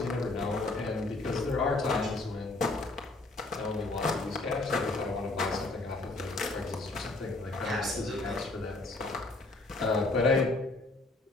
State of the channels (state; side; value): quieter; right; 3.0 dB